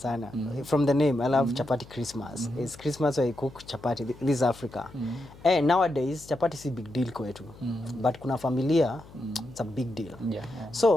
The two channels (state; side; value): noise; left; hum, 20 dB below the sound